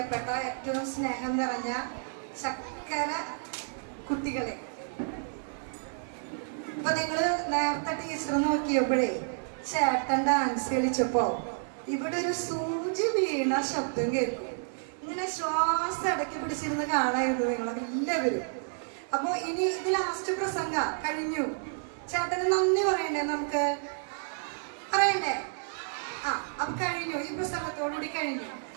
ഏറ്റവും സ്നേഹം നിറഞ്ഞ ചക്കര കുട്ടികളെ, ഇപ്പൊ നിങ്ങള് നേരത്തെ ടീച്ചർ നോക്കിയപ്പോഴേ ചേട്ടൻ ഡാൻസ് കളിച്ചപ്പോ ഇവിടെ ഒരു സൂചി വീണ ശബ്ദം കേൾക്കും. ഇങ്ങനെ ശ്വാസം അടക്കി പിടിച്ചിരുന്ന് കാണായിരുന്നു നിങ്ങളൊക്കെ എല്ലാവരും. അപ്പൊ ഇനി ഇത് ലാസ്റ്റ് പ്രസംഗ കഴിഞ്ഞു. ചേട്ടന് നന്ദി പറയണ്ടേ? നമുക്ക് പറയണ്ടേ? അപ്പൊ കഴിഞ്ഞു, ഈ പ്രസംഗത്തോടുകൂടി കഴിഞ്ഞു.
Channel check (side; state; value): left; silent; 58 dB below the other